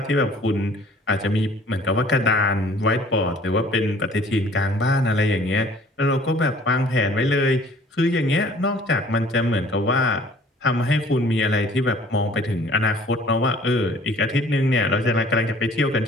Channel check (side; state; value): both; normal; correlation 0.53